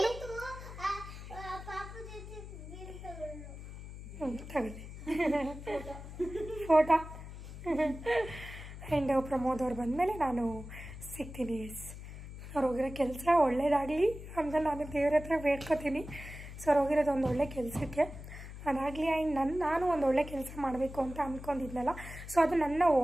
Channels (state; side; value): noise; left; hum, 12 dB below the sound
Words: ತಗೊಳ್ಳಿ ಫೋಟೋ. ಆ್ಯಂಡ್ ಪ್ರಮೋದ್ ಅವ್ರು ಬಂದಮೇಲೆ ನಾನು ಸಿಗ್ತೀನಿ. ಅವ್ರು ಹೋಗಿರೋ ಕೆಲಸ ಒಳ್ಳೇದಾಗಲಿ ಅಂತ ನಾನು ದೇವ್ರ ಹತ್ರ ಬೇಡ್ಕೊತೀನಿ. ಸೊ ಅವ್ರು ಹೋಗಿರೋದು ಒಂದು ಒಳ್ಳೆ ಕೆಲಸಕ್ಕೆ ಅದಾಗಲಿ. ಆ್ಯಂಡ್ ನಾನು ಒಂದು ಒಳ್ಳೆ ಕೆಲಸ ಮಾಡಬೇಕು ಅಂತ ಅಂದ್ಕೊಂಡಿದ್ನಲ್ಲ, ಸೊ ಅದು ನನ್ನ